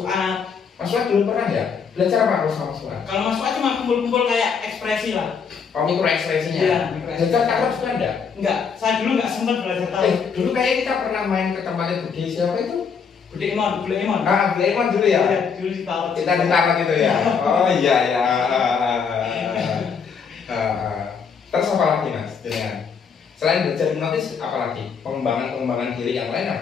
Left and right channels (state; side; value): quieter; right; 6.2 dB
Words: Mas Fuad dulu pernah ya? Belajar apa kalau sama Mas Fuad? Kalau Mas Fuad cuma kumpul-kumpul kayak ekspresi lah. Oh mikro ekspresinya? Iya. Belajar taruh juga ada? Enggak, saya dulu nggak sempat belajar taruh. Dulu kayak kita pernah main ke tempatnya Budi siapa itu? Budi Emon. Budi Emon dulu ya? Iya, dulu ditaruh. Kita ditaruh gitu ya? Oh iya ya. Terus apa lagi Mas? Selain belajar hipnotis, apa lagi? Pengembangan diri yang lain